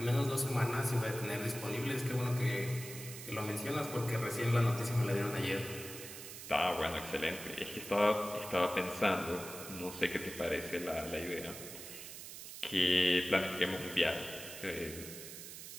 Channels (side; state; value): right; noise; hiss, 11 dB below the sound